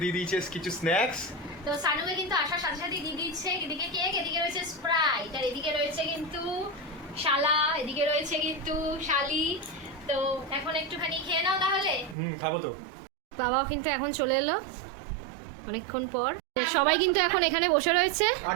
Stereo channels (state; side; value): drops out; left; at 12.2 s